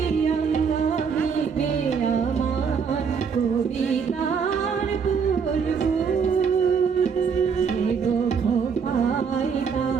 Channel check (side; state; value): left; quieter; 6.2 dB